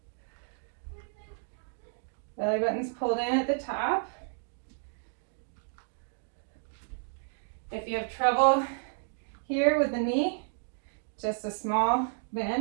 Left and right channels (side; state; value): left; silent; digital silence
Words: Belly button's pulled in at the top. If you have trouble here with the knee, just a small